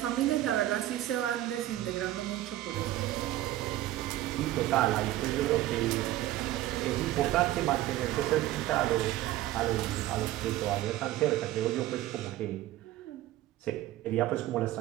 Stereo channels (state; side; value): quieter; left; 14.9 dB